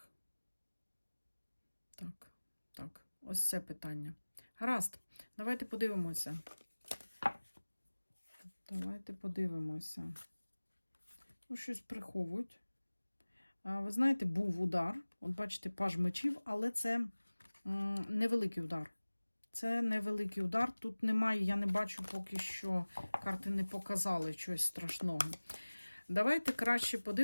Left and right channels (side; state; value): both; inverted; correlation -1.00